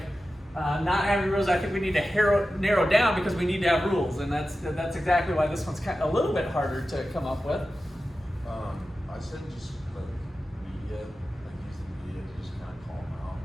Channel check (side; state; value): both; normal; correlation 0.93